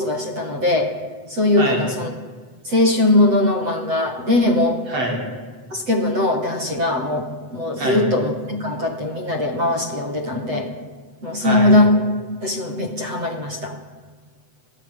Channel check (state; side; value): late; left; 7.9 ms